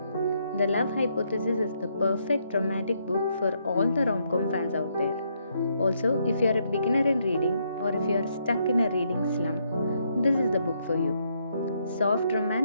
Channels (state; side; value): inverted; both; correlation -0.75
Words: The Love Hypothesis is the perfect romantic book for all the rom-com fans out there. Also, if you are a beginner in reading or if you are stuck in a reading slump, this is the book for you. Soft